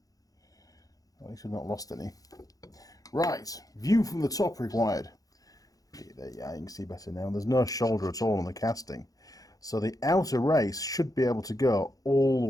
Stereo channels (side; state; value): right; late; 0.17 ms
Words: At least we've not lost any. Right. View from the top required. There, yeah, you can see better now. There's no shoulder at all on the casting. So the outer race should be able to go all the